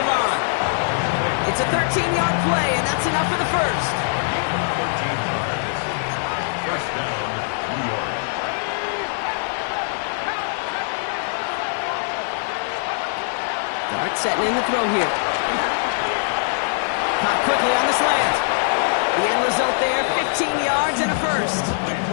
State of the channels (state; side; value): silent; right; digital silence